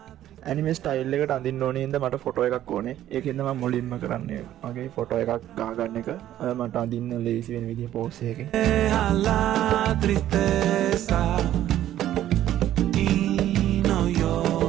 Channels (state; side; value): quieter; left; 12.5 dB